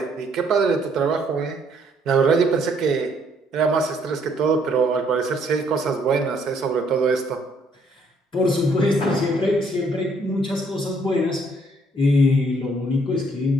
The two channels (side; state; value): both; normal; correlation 0.67